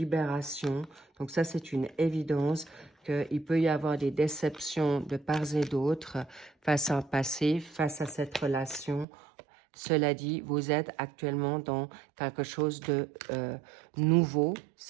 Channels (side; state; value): left; drops out; at 9.1 s